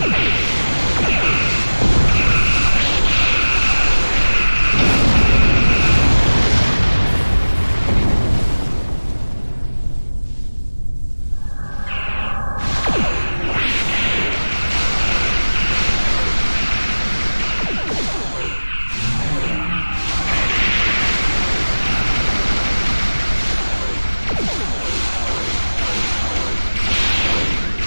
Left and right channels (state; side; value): inverted; both; correlation -1.00